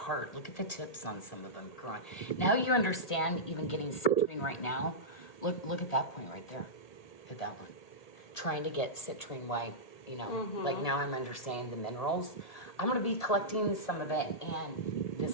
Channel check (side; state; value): right; late; 1.8 ms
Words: Look at the tips on some of them growing. Now you understand even getting citrine right now. Look at that point right there. Look at that one. Trying to get citrine white, you know, like now I'm understanding the minerals. I'm going to be collecting some of it, and